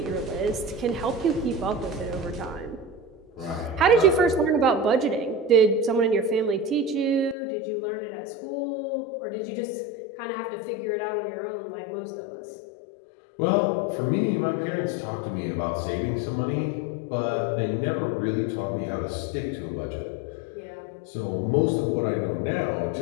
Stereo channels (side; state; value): right; drops out; at 7.4 s